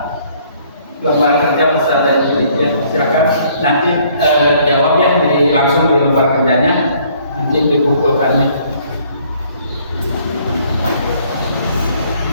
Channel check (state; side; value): inverted; both; correlation -0.61